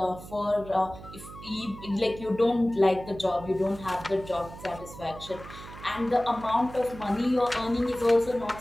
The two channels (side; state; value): right; noise; hum, 15 dB below the sound